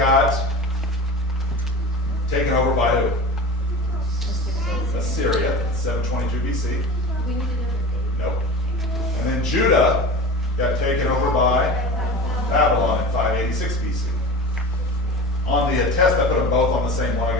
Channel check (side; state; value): both; normal; correlation 0.34